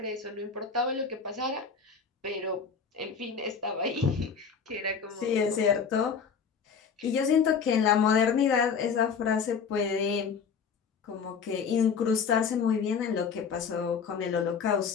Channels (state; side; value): quieter; right; 6.1 dB